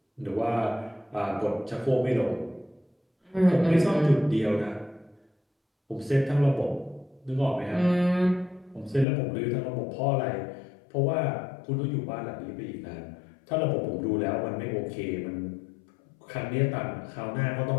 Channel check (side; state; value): right; drops out; at 9.1 s